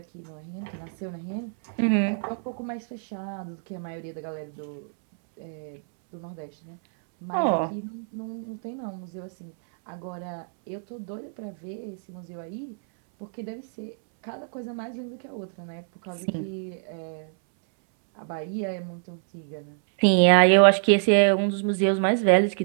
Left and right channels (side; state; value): left; silent; 61 dB below the other